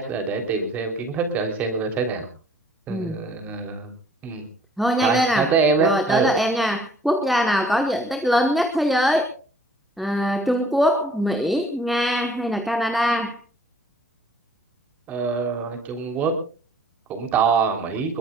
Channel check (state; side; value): normal; both; correlation 0.57